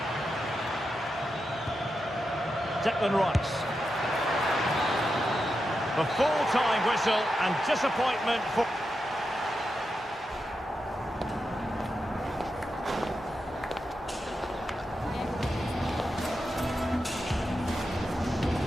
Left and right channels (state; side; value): normal; both; correlation 0.88